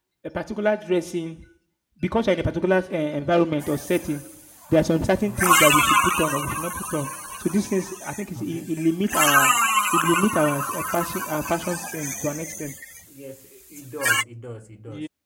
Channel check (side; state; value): both; identical; correlation 1.00